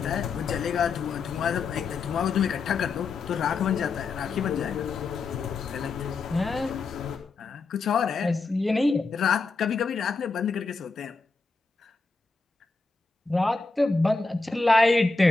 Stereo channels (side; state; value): right; quieter; 4.1 dB